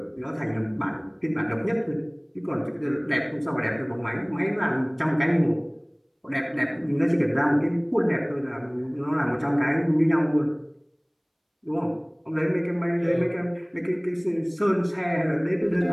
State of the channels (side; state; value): both; identical; correlation 1.00